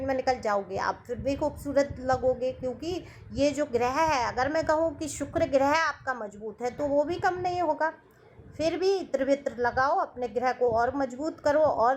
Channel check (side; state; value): both; identical; correlation 1.00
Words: निकल जाओगे आप फिर भी खूबसूरत लगोगे, क्योंकि ये जो ग्रह है, अगर मैं कहूँ कि शुक्र ग्रह आपका मजबूत है तो वो भी कम नहीं होगा। फिर भी इत्र वित्र लगाओ, अपने ग्रह को और मजबूत करो,